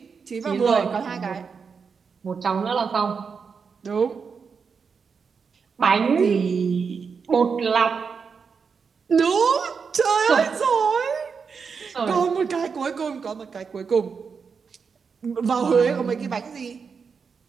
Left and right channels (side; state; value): left; quieter; 5.7 dB